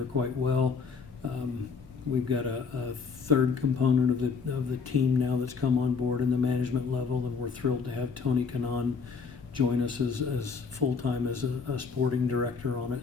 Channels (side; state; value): right; quieter; 5.4 dB